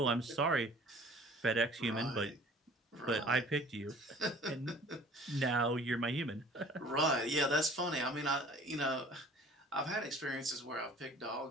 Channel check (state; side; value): normal; both; correlation 0.49